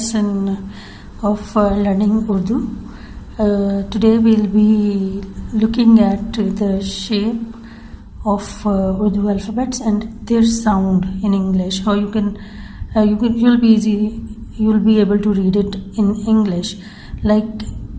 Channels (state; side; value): identical; both; correlation 1.00